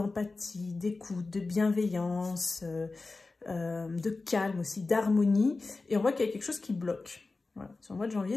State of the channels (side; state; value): right; quieter; 3.6 dB